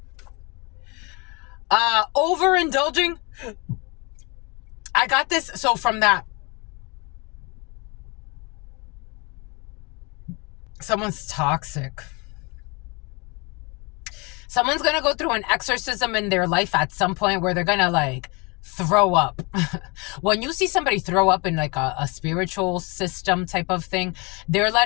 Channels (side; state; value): right; quieter; 29.0 dB